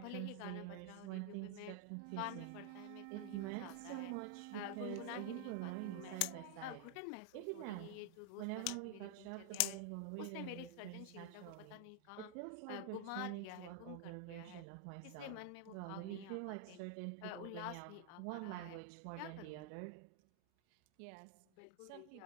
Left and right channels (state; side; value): different; both; correlation 0.00